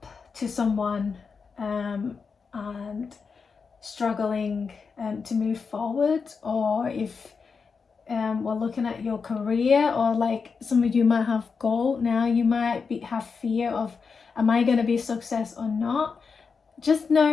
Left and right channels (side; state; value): right; quieter; 5.3 dB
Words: to someone and struggling to move forward, or if we're looking at your career, or like some of you might have goal now, you might have fear of, am I going to be a success or not? Just